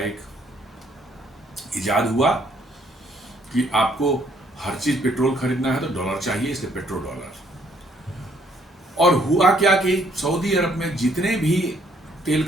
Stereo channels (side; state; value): both; normal; correlation 0.66